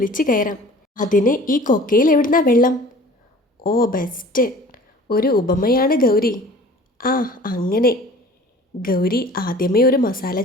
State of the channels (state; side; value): normal; both; correlation 0.45